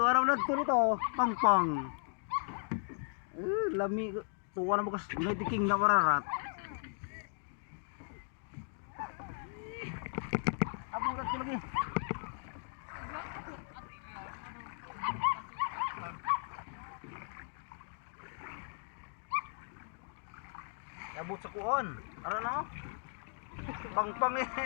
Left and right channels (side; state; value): right; silent; 53 dB below the other